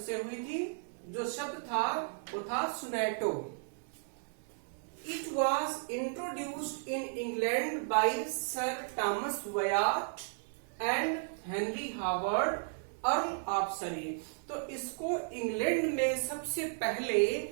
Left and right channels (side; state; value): left; silent; 55 dB below the other